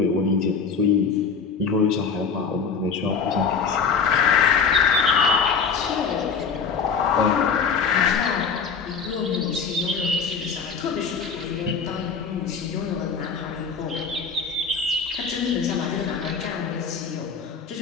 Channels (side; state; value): right; quieter; 5.7 dB